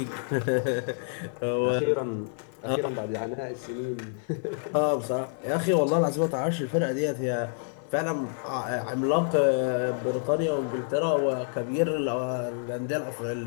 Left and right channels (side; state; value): right; silent; digital silence